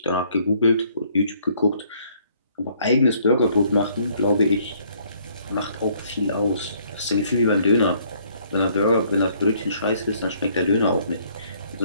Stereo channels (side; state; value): both; inverted; correlation -0.64